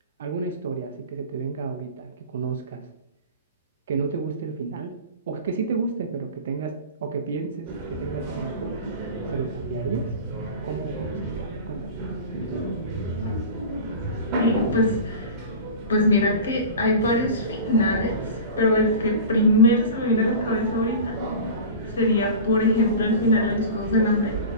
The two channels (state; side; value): inverted; both; correlation -0.34